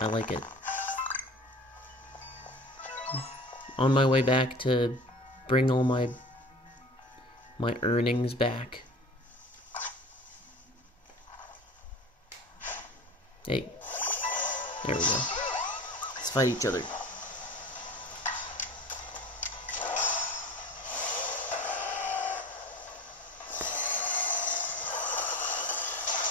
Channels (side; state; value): both; normal; correlation 0.39